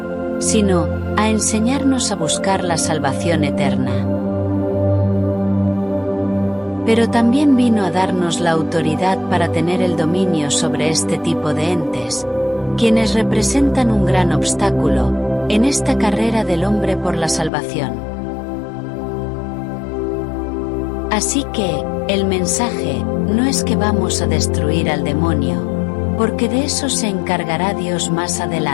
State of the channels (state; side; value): drops out; right; at 17.5 s